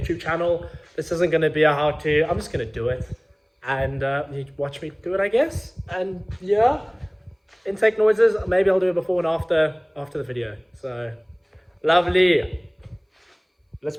channel. This isn't going to be a how-to. I'm just going to do it, and you watch me do it, I guess. And yeah, intake noises, maybe I'll do it before and after the video. So, lovely.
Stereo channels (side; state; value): both; identical; correlation 1.00